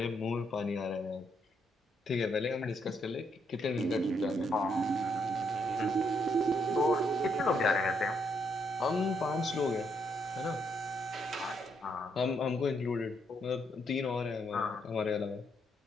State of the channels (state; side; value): normal; both; correlation 0.75